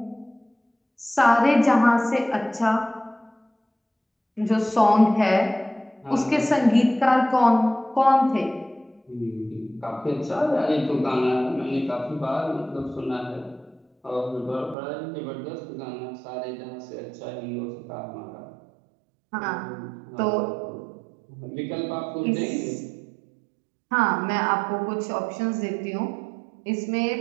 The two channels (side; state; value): left; drops out; at 14.8 s